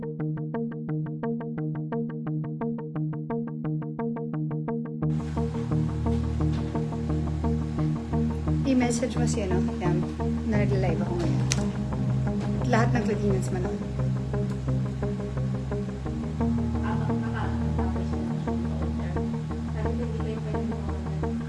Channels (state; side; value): identical; both; correlation 1.00